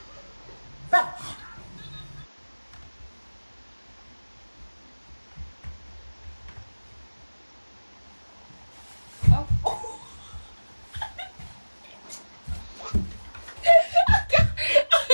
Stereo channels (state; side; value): inverted; both; correlation -1.00